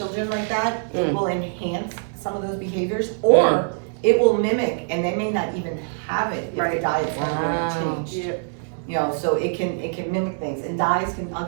like that. It will enhance some of those behaviors, or it will mimic, and they may not even have it if the Right. diet's never Wow. changed. Yeah. You know, so it can mimic things, and dyes can. I'll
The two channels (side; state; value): left; silent; 63 dB below the other